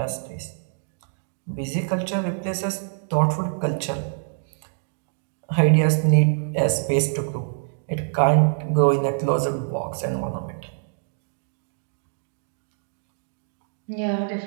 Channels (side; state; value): left; silent; digital silence